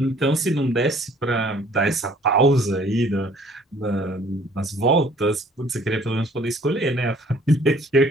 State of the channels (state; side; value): normal; both; correlation 0.56